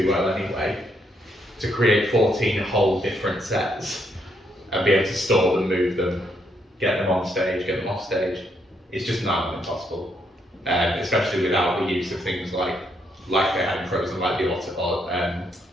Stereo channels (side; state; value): both; normal; correlation 0.75